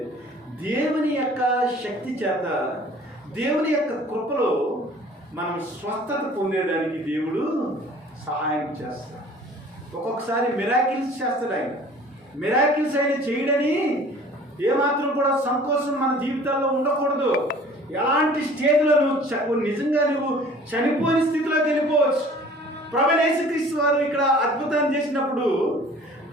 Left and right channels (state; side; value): normal; both; correlation 0.49